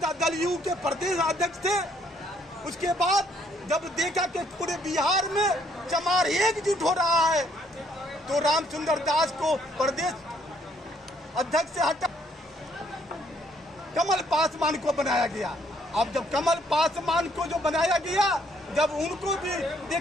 दल यू के प्रदेश अध्यक्ष थे। उसके बाद जब देखा कि पूरे बिहार में चमार एकजुट हो रहा है तो रामचंद्र दास को प्रदेश अध्यक्ष से हटा कमल पासवान को बनाया गया। अब जब कमल पासवान को जो बनाया गया, जब उनको भी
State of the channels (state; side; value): normal; both; correlation 0.67